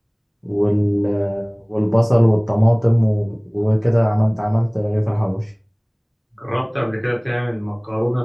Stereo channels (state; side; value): identical; both; correlation 1.00